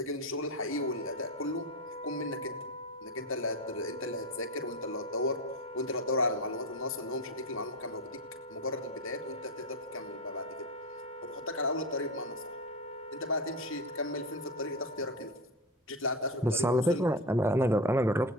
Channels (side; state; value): both; normal; correlation 0.21